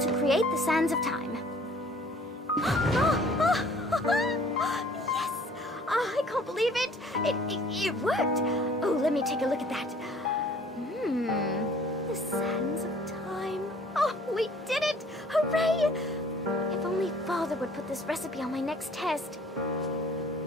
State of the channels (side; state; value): both; normal; correlation 0.54